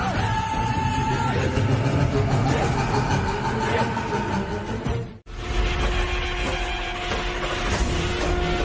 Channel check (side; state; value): both; identical; correlation 1.00